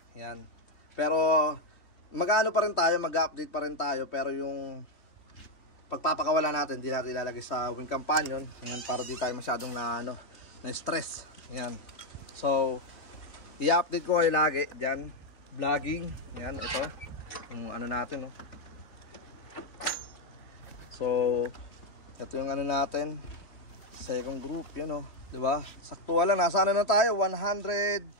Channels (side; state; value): right; late; 3.5 ms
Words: Yan. Pero, pa rin tayo, mag-update pa rin tayo. Pero yung pagpapakawala natin, di natin ilalagay sa win companion. Yan, para di tayo masyadong na-stress. Yan. So, i-update ko kayo lagi dyan. Vlogging, yan, ito yung natin so ito yung natin, second group, yan diba, sakto lang, nasaan na tayo, 160